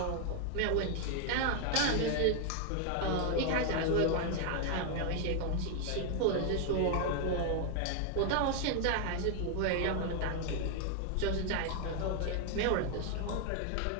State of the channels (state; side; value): different; both; correlation 0.00